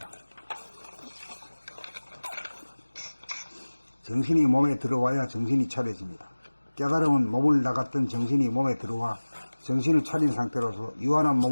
정신이 몸에 들어와야 정신이 차려집니다. 깨달음은 몸을 나갔던 정신이 몸에 들어와 정신을 차린 상태로서 유한한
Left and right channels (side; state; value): both; inverted; correlation -1.00